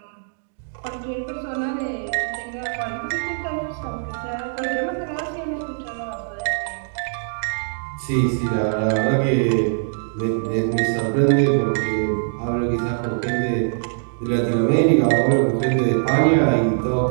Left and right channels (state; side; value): silent; left; digital silence